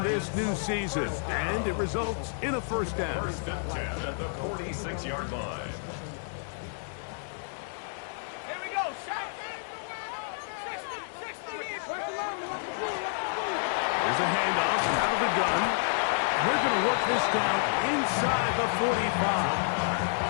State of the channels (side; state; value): right; silent; digital silence